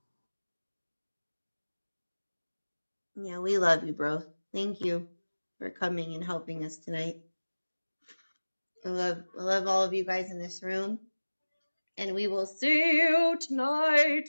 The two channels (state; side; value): inverted; both; correlation -1.00